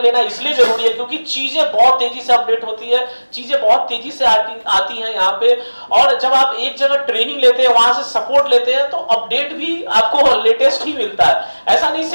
लेना इसलिए जरूरी है क्योंकि चीजें बहुत तेजी से अपडेट होती है, चीजें बहुत तेजी से आती हैं यहाँ पे, और जब आप एक जगह ट्रेनिंग लेते हैं, वहां से सपोर्ट लेते हैं, तो अपडेट भी आपको लेटेस्ट ही मिलता है। ऐसा नहीं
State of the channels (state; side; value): inverted; both; correlation -1.00